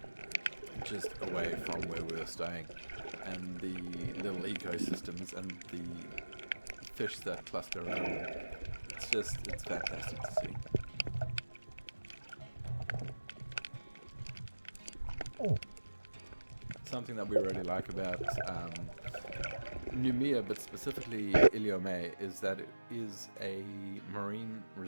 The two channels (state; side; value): inverted; both; correlation -1.00